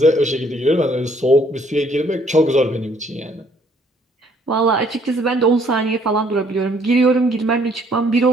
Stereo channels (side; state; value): both; normal; correlation 0.64